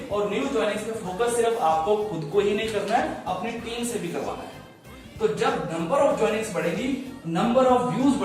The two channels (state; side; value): identical; both; correlation 1.00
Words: और न्यू ज्वाइनिंग्स पे फोकस सिर्फ आपको खुद को ही नहीं करना है, अपनी टीम से भी करवाना है। तो जब नंबर ऑफ ज्वाइनिंग्स बढ़ेगी, नंबर ऑफ व्यूज